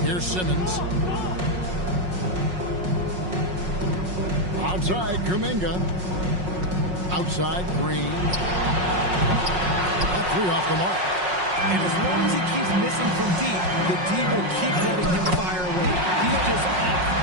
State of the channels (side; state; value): left; late; 5.5 ms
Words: Here's Simmons. Outside, Kuminga. Outside, Green. That three off the mark. And as long as he keeps missing from deep, the D will keep letting him fire away. He's just off